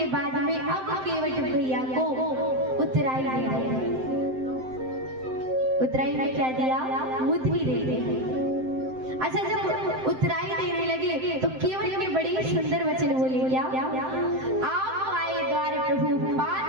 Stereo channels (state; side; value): late; left; 7.7 ms